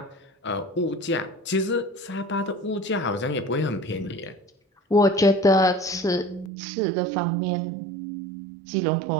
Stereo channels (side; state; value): left; drops out; at 6.5 s